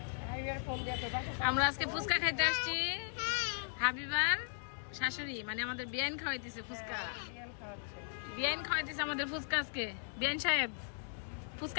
আমরা আজকে ফুচকা খাইতে আসছি। হাবিবার শাশুড়ি মানে আমাদের বিয়ান খাওয়াইতেছে ফুচকা। বিয়ান খাওয়াইতেছে আমাদের ফুচকা আজকে। বিয়ান সাহেব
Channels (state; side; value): silent; right; digital silence